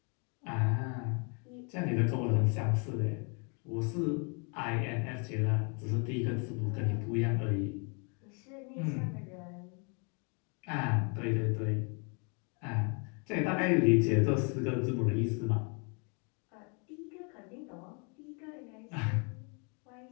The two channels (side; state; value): right; quieter; 35.9 dB